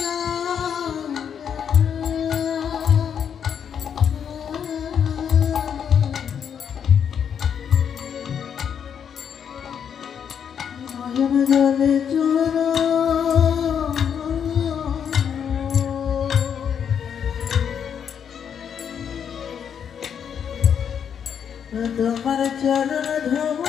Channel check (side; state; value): right; quieter; 7.9 dB